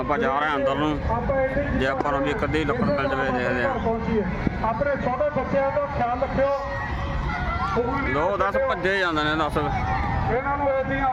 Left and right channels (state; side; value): identical; both; correlation 1.00